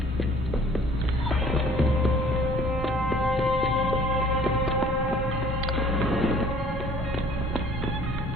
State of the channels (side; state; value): both; normal; correlation 0.53